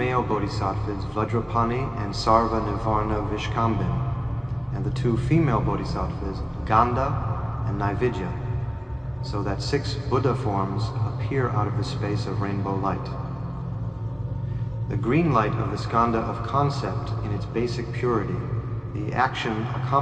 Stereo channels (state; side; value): identical; both; correlation 1.00